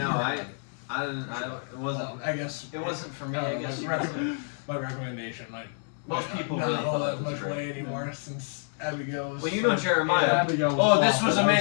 I didn't. It wasn't. Well, I guess It wasn't for me. uh, I guess my you recommend- my recommendation, like Most people not really all thought that it was much great. way anymore since Abigail was. Well, you know Jeremiah. Yeah, Abigail was Oh, this awful. was That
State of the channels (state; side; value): silent; right; 56 dB below the other